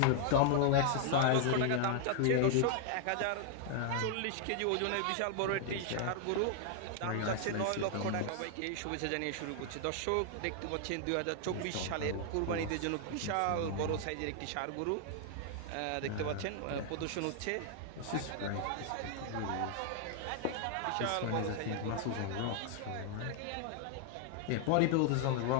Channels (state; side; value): different; both; correlation 0.00